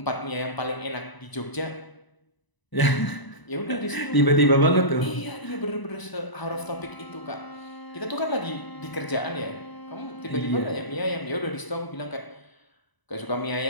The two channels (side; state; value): right; late; 1.0 ms